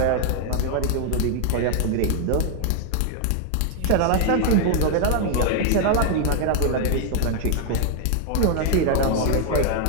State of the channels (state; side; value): different; both; correlation 0.00